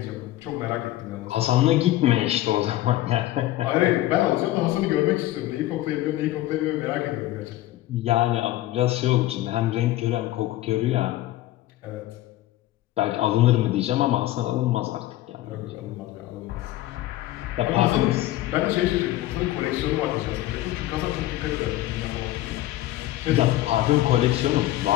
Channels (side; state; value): right; quieter; 15.4 dB